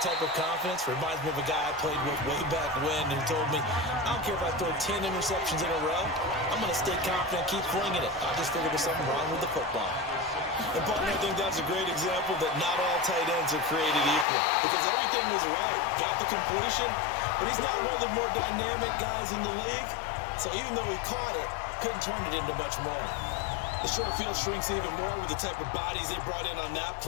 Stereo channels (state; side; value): drops out; right; at 14.2 s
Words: type of confidence reminds me of a guy I played with way back when who told me, I don't care if I throw 10 interceptions in a row. I'm going to stay confident and keep flinging it. I just figured there's something wrong with the football. And, partner, I think that's a great example that not all tight ends are created equal because everything was right. Got the completion, but he's not one of the more dynamic guys in the league. So even though he caught it, couldn't turn it into much more. The short field shrinks even more with the type of bodies they brought in on that